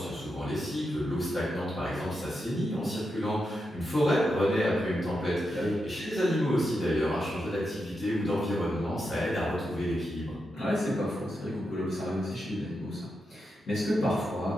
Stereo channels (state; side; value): normal; both; correlation 0.86